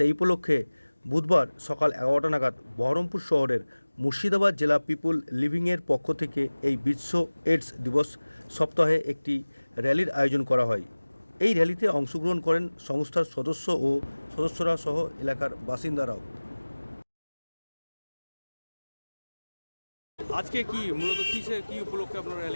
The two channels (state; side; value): inverted; both; correlation -1.00